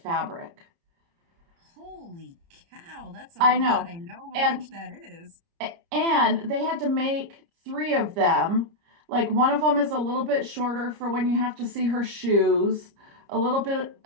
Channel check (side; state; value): left; late; 30 ms